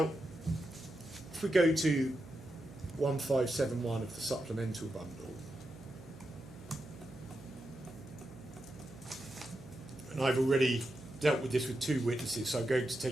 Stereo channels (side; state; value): right; noise; hum, 18 dB below the sound